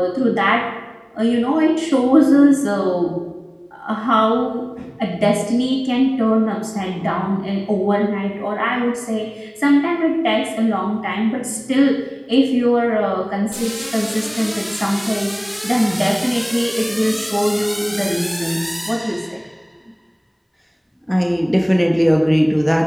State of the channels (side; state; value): both; identical; correlation 1.00